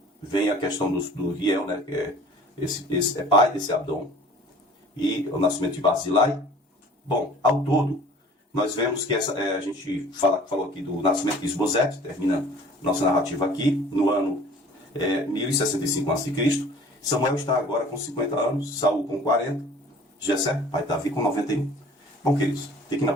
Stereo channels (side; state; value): both; normal; correlation 0.48